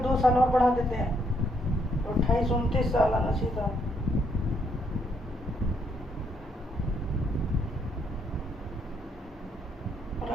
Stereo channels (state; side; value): normal; both; correlation 0.73